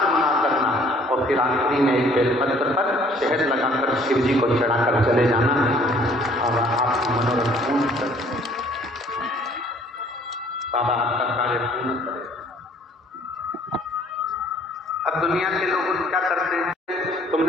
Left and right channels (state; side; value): normal; both; correlation 0.58